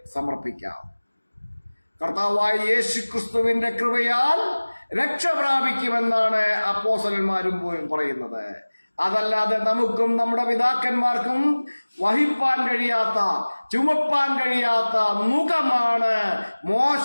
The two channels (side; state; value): both; inverted; correlation -1.00